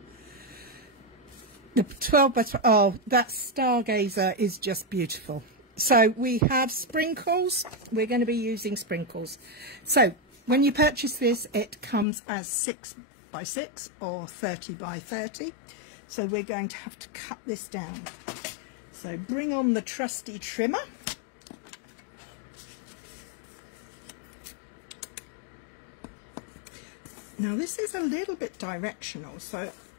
The 12 by 12, oh, that stargazer is just beautiful. So we have sprinkles. We're going to be using sprinkles. So when you purchase this, it comes as 6 by 6 or 30 by 30. So we're going to have to cut this down. So bring on the trusty trimmer. Now this is a little bit directional, so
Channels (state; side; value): drops out; right; at 12.1 s